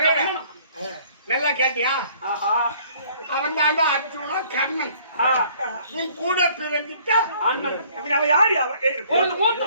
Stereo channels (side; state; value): both; inverted; correlation -0.58